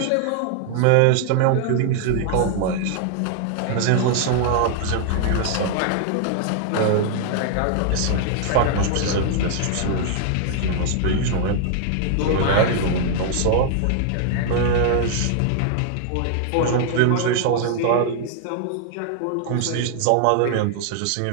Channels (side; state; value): both; different; correlation 0.00